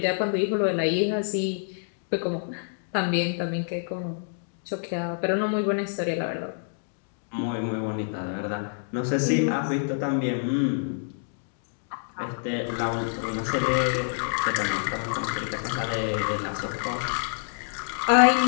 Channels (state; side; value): silent; right; digital silence